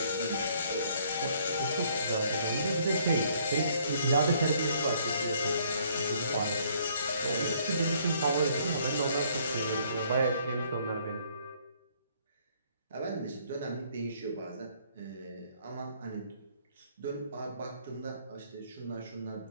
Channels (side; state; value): both; inverted; correlation -0.63